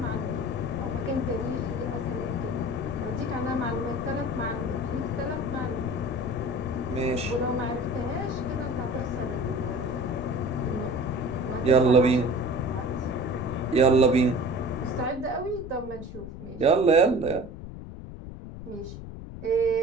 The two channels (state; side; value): noise; left; rumble, 11 dB below the sound